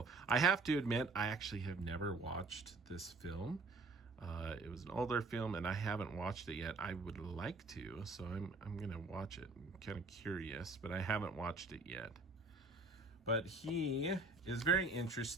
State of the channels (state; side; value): quieter; left; 3.4 dB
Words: I have to admit, I actually have never watched this film. It was an older film, and I haven't watched it yet. I would like to, so I'm gonna watch it. I'm kind of curious, but I haven't watched it yet. But he is very